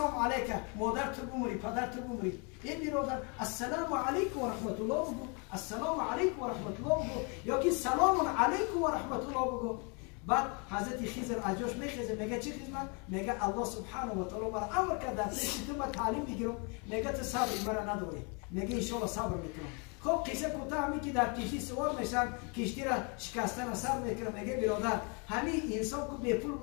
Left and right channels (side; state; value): right; quieter; 34.1 dB